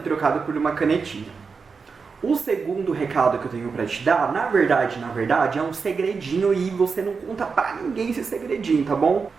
trocado por uma canetinha. O segundo recado que eu tenho para te dar, na verdade, é um segredinho e você não conta pra ninguém esse segredinho, tá bom?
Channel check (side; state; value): left; quieter; 5.1 dB